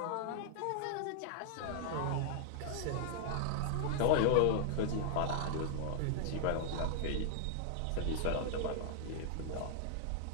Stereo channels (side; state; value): both; different; correlation -0.01